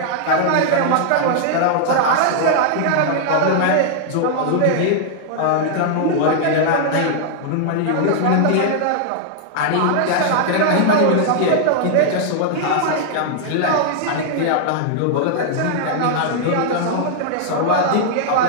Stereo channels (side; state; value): both; different; correlation -0.01